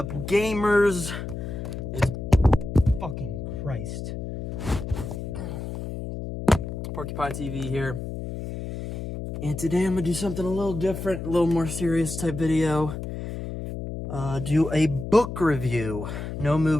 gamers? It's fucking Christ. Porcupine TV here. And today I'm gonna do something a little different, a little more serious type video. Do a book review. No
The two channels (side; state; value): left; noise; hum, 6 dB below the sound